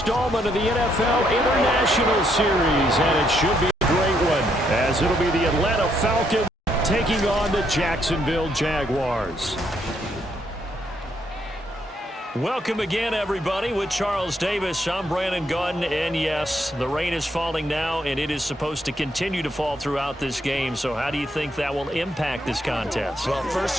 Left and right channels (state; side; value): normal; both; correlation 0.74